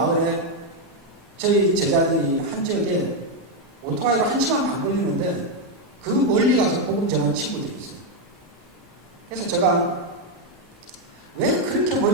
저희 제자들이 한 지역에 오토바이로 1시간 반 걸리는데 그 멀리 가서 복음 전하는 친구들이 있어요. 그래서 제가 왜 그렇게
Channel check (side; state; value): both; normal; correlation 0.03